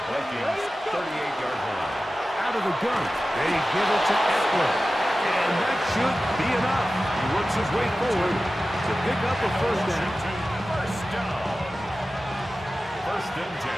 Vikings 38-yard line. Out of the gun. They give it to Eckler. And that should be enough. He works his way forward to pick up a first down. First down. 1st and 10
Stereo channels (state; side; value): normal; both; correlation 0.95